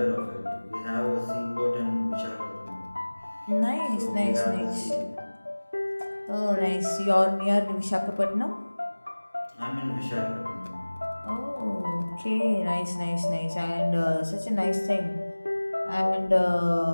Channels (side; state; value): both; inverted; correlation -1.00